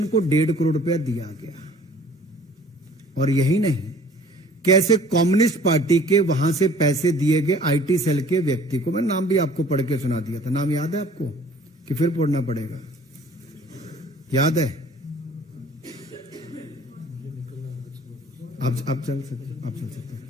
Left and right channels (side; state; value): both; normal; correlation 0.51